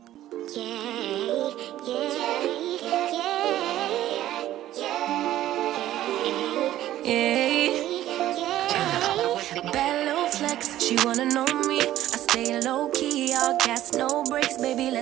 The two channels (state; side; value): quieter; left; 13.5 dB